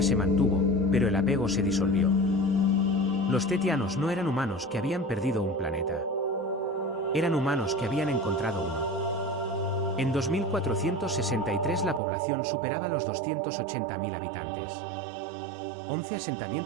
se mantuvo, pero el apego se disolvió. Los tetianos no eran humanos que habían perdido un planeta. Eran humanos que habían encontrado uno. En 2463 la población superaba los 280.000 habitantes. 11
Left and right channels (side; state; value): left; drops out; at 12.0 s